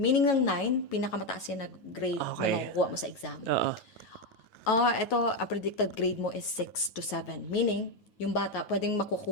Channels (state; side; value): late; right; 9.3 ms